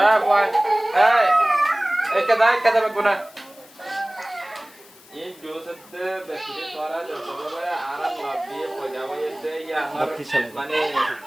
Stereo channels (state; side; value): noise; left; hiss, 24 dB below the sound